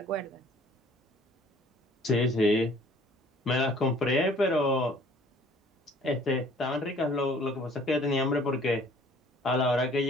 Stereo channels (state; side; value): normal; both; correlation 0.54